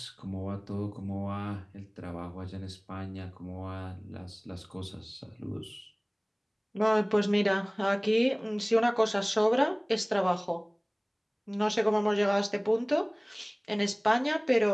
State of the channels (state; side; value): identical; both; correlation 1.00